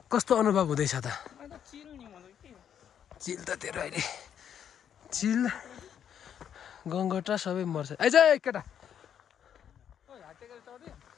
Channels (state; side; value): quieter; right; 8.9 dB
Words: कस्तो अनुभव हुँदैछ त चिल त तेरो अहिले चिल गङ्गटा सबै मर्छ आइज केटा